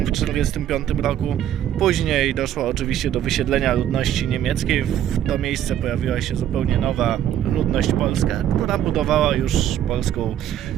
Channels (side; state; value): left; quieter; 10.9 dB